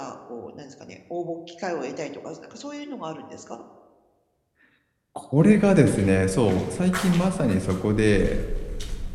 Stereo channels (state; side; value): identical; both; correlation 1.00